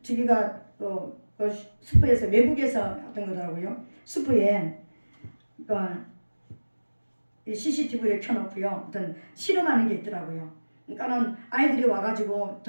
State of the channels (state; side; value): inverted; both; correlation -1.00